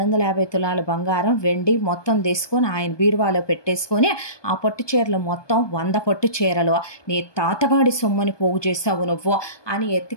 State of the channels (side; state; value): right; late; 1.2 ms